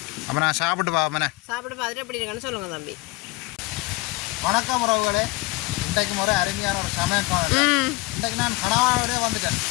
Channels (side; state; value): right; quieter; 23.0 dB